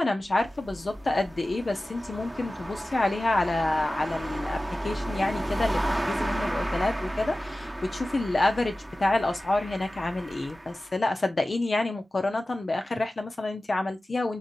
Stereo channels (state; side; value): normal; both; correlation 0.96